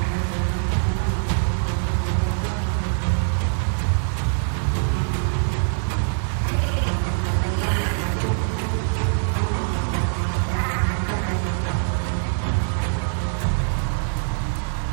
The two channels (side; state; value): left; silent; digital silence